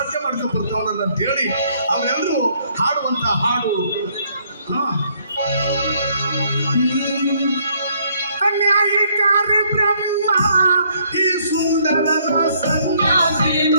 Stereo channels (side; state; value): both; inverted; correlation -0.67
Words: ಮಾಡ್ಕೊಂಡು ಬರ್ತಾವನಲ್ಲ ಅಂತ ಹೇಳಿ ಅವರೆಲ್ಲರೂ ಹಾಡುವಂತ ಹಾಡು ಅನ್ಯಾಯಕಾರ ಬ್ರಹ್ಮ ಈ ಸುಂದರನ ಸನ್ಯಾಸಿ